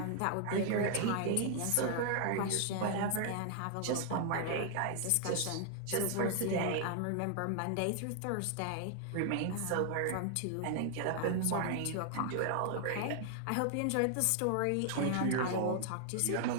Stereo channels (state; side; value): different; both; correlation 0.00